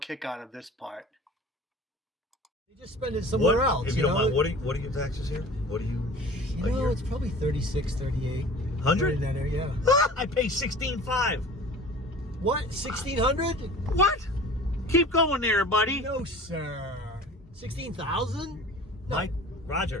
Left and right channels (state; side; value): normal; both; correlation 0.42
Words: out of this part. You just spend it somewhere else. If you don't mind, what are your taxes here? What are you? You know, it's probably 36, 38. 100? In that area, I pay $16,500. What? 1,600? What? Keep going there, buddy. No, sir. 16,000?